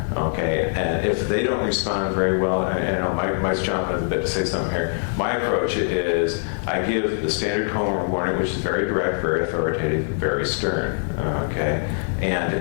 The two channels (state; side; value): silent; right; 63 dB below the other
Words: Okay, and if they don't respond very well, and Mike's jumping in a bit to say something here. My approach is I give the standard coma warning, which is very direct, very authoritative, very stern. Okay,